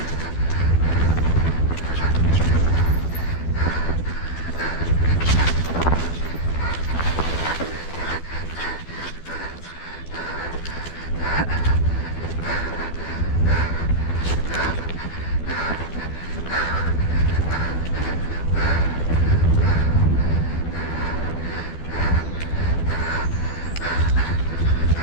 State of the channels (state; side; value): late; right; 12 ms